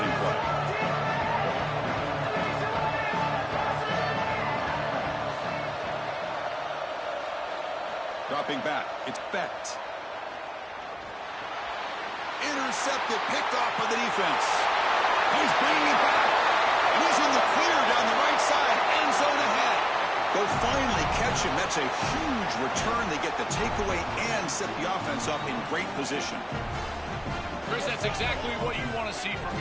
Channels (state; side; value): identical; both; correlation 1.00